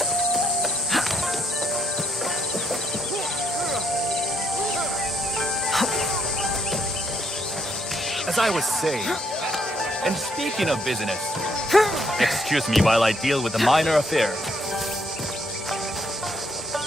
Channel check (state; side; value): normal; both; correlation 0.73